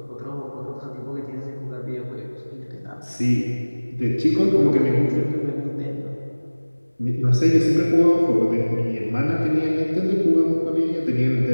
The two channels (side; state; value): both; inverted; correlation -1.00